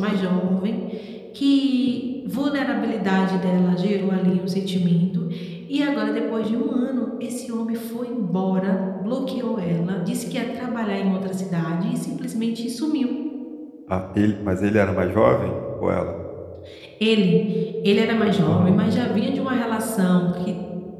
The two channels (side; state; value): both; identical; correlation 1.00